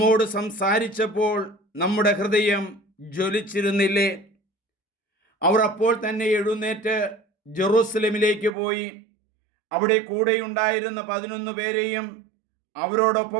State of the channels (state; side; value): drops out; left; at 8.5 s